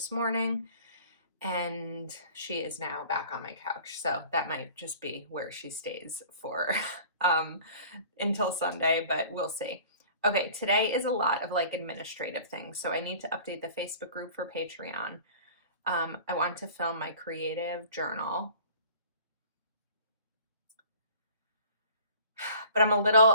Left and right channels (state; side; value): inverted; both; correlation -0.46